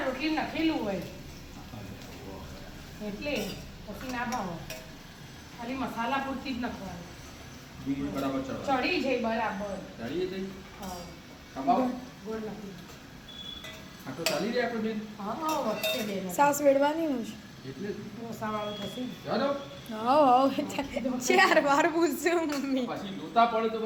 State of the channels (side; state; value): both; identical; correlation 1.00